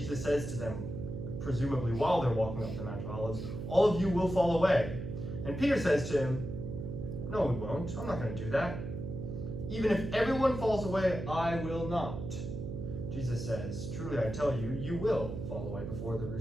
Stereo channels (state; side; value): noise; right; hum, 6 dB below the sound